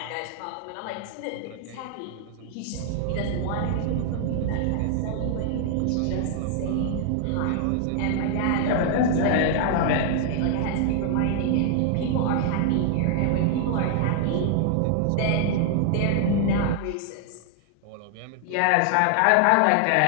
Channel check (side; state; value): both; different; correlation 0.00